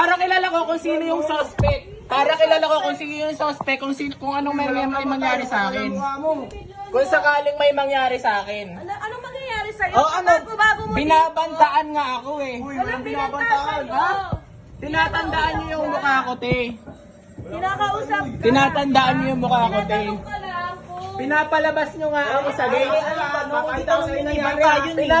kilala ko kung sino yung suspect. Para kilala ko kung sino yung suspect, kung anong may mangyari sa akin. Kung sakaling may mangyari sa akin. Anong mangyayari sa'yo? Oh, ano? Bago mo Binabantaan nga ako eh. Walang binabantaan. Ha? Tinatandaan niyo yung mukha ko, te. Kinakausap ka. Tinatandaan niyo yung mukha ko, te. Tinatanong ka lang kung... Pinapalabas nyo nga ako sa gate.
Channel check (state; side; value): identical; both; correlation 1.00